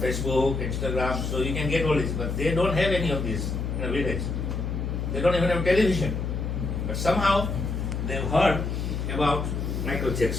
Instagram, so you can get all this, but they don't have any of this in a village. They don't even have television. But somehow they've heard about Michael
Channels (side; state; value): left; noise; hum, 2 dB below the sound